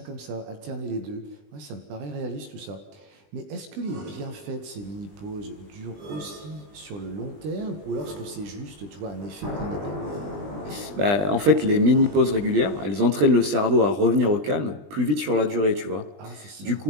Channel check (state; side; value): late; left; 20 ms